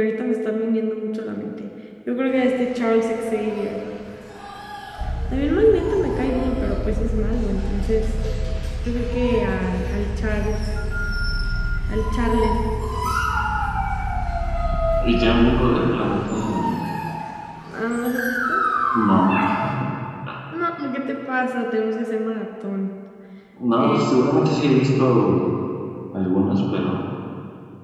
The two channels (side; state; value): both; identical; correlation 1.00